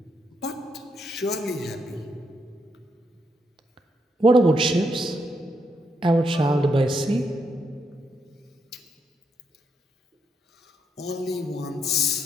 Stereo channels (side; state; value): both; normal; correlation 0.79